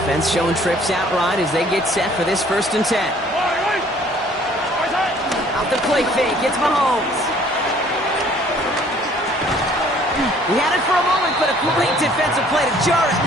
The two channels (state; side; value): normal; both; correlation 0.57